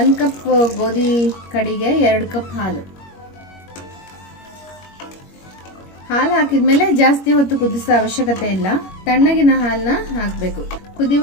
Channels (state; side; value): late; right; 21 ms